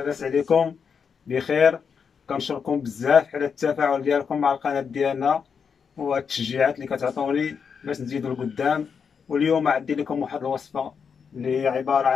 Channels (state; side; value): quieter; right; 6.4 dB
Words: عليكم؟ بخير. كنشكركم بزاف على التفاعل ديالكم مع القناه ديالنا والتشجيعات اللي كتعطوني باش نزيدو لقدام. واليوم عندي لكم واحد الوصفه اللي هي عباره